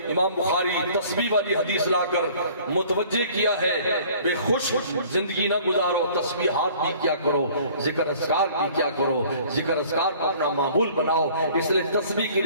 امام بخاری تسبیح والی حدیث لا کر متوجہ کیا ہے بے خوش زندگی نہ گزارو، تسبیحات بھی کیا کرو، ذکر اذکار بھی کیا کرو، ذکر اذکار کو اپنا معمول بناؤ۔ اس لیے تسبیح کی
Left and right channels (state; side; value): inverted; both; correlation -0.52